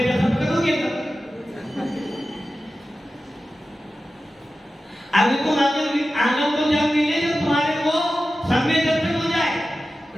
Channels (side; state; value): both; normal; correlation 0.93